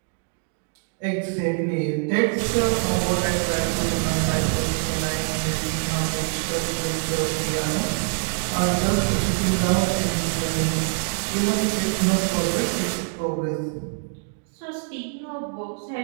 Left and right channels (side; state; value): left; silent; 62 dB below the other